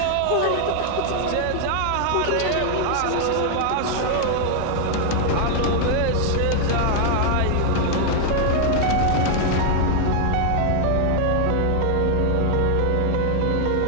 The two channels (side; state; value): both; different; correlation 0.00